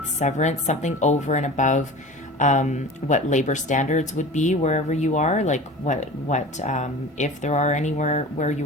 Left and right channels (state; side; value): normal; both; correlation 0.36